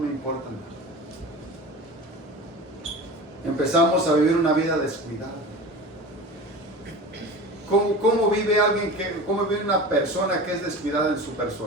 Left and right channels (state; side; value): normal; both; correlation 0.33